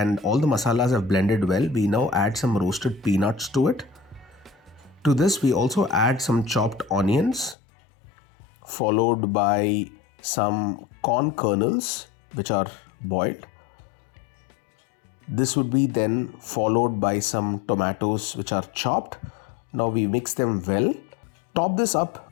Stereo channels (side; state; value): right; drops out; at 7.6 s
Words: all the masalas have blended well, we now add some roasted peanuts to it. To this, we also add some chopped onions, followed by some corn kernels which are boiled. This would be then followed by some tomatoes which are chopped. Now we mix them well. Top this